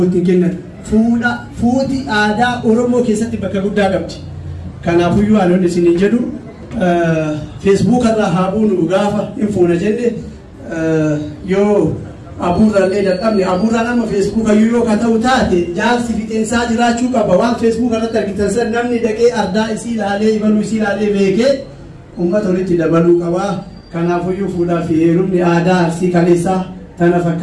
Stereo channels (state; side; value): identical; both; correlation 1.00